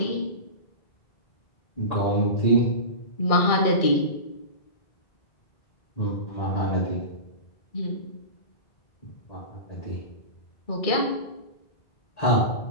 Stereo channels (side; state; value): right; late; 2.3 ms